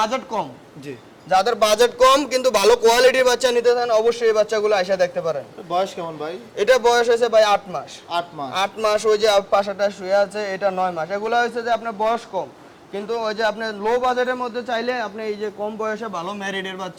কম, জি। যাদের বাজেট কম কিন্তু ভালো কোয়ালিটির বাচ্চা নিতে চান, অবশ্যই এই বাচ্চাগুলো আইসা দেখতে পারেন। বয়স কেমন ভাই? এটা বয়স হয়েছে ভাই 8 মাস। 8 মাস। 8 মাস। ওই যে পাশাটা শুয়ে আছে এটা 9 মাস। এগুলো হয়েছে যে আপনার বয়স কম, কিন্তু ওই যে আপনি লো বাজেটের মধ্যে চাইলে আপনি এই যে কম বয়সে ভালো ম্যারিডের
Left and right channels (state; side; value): identical; both; correlation 1.00